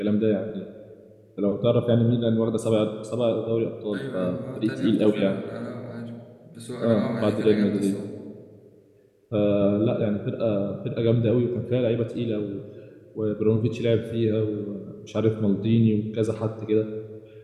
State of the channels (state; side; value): identical; both; correlation 1.00